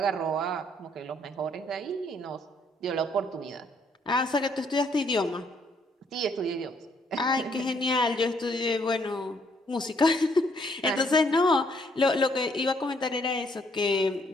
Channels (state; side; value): normal; both; correlation 0.68